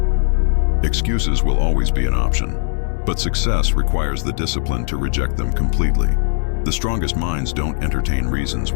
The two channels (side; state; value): right; silent; digital silence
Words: Excuses will always be an option, but success requires the discipline to reject them completely. The strongest minds don't entertain reasons